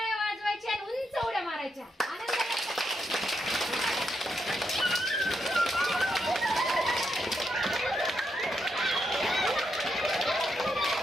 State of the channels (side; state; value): both; normal; correlation 0.82